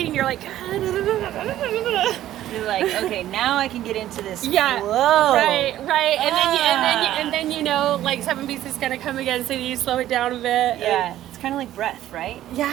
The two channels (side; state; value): left; quieter; 13.1 dB